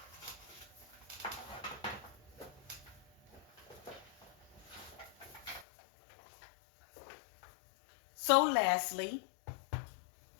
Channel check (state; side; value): drops out; right; at 5.7 s